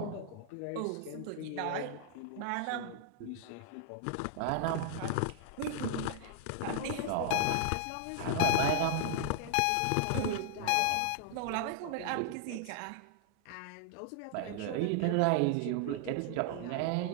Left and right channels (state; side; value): different; both; correlation 0.00